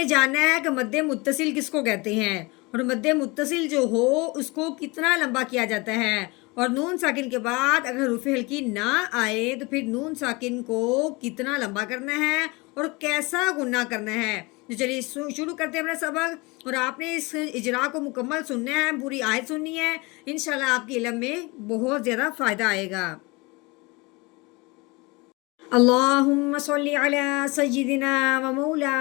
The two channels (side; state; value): right; quieter; 25.4 dB